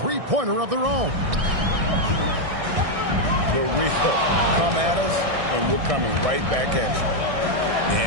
of their own. The real come at us, and we're coming right back at you.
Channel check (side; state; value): left; late; 1.6 ms